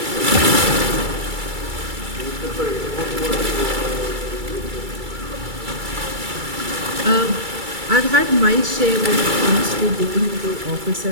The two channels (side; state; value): left; late; 2.3 ms